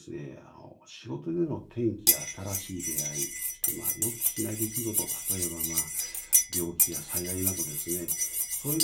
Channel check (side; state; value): both; identical; correlation 1.00